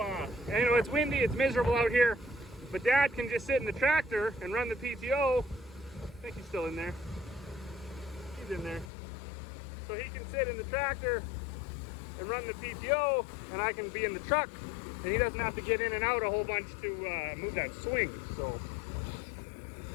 you know, it's windy, it's miserable out here, but Dad can just sit in the tractor and run the PTO. I think he's still in there. He's in there. So he can sit in the tractor and run the PTO, and I can be in the truck. And he doesn't have to get in and out a whole bunch to move that swing. So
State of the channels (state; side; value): drops out; right; at 8.9 s